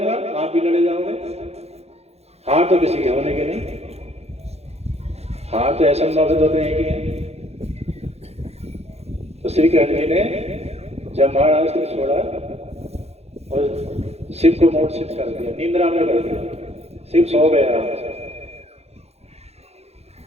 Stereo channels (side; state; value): left; late; 0.31 ms